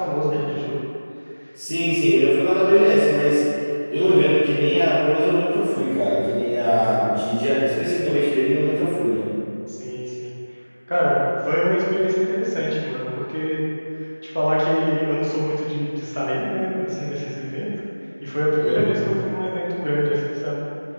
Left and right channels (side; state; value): both; inverted; correlation -1.00